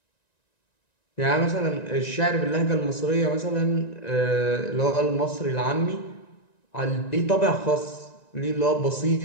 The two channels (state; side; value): late; right; 1.9 ms